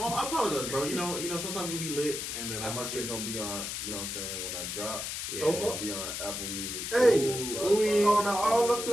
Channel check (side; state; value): left; noise; hiss, 4 dB below the sound